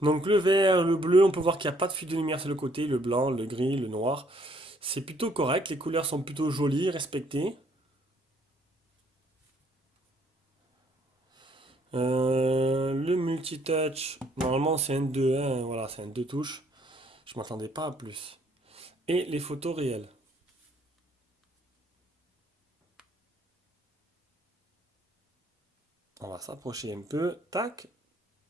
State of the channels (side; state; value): both; normal; correlation 0.65